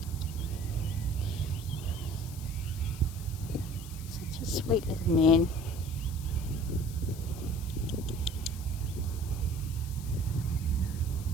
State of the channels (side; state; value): left; noise; hiss, 16 dB below the sound